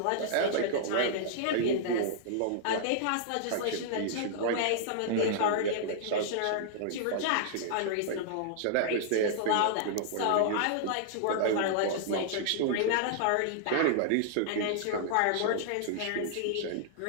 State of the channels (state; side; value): different; both; correlation -0.01